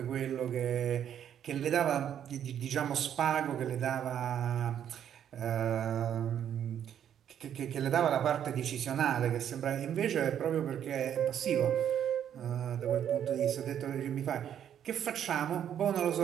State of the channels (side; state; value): left; quieter; 9.6 dB